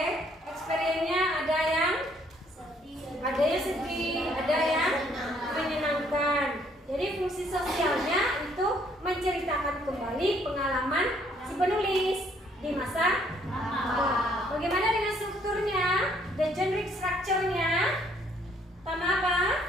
Experience-nya ada yang sedih, ada yang menyenangkan. Jadi fungsi sosialnya itu menceritakan kembali pengalaman si penulis di masa lampau. Bagaimana dengan strukturnya? The generic structure-nya pertama apa?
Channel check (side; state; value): both; normal; correlation 0.65